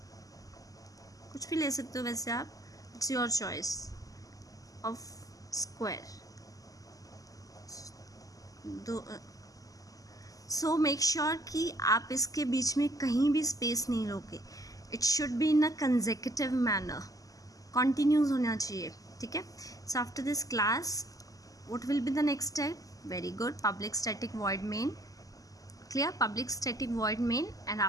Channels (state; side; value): late; right; 0.17 ms